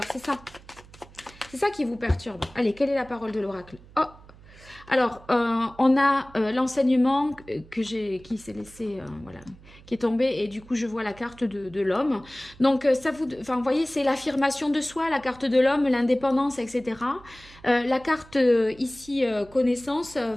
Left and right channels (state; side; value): noise; right; hum, 22 dB below the sound